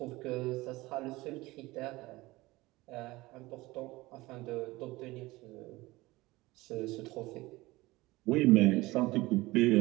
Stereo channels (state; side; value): quieter; left; 20.2 dB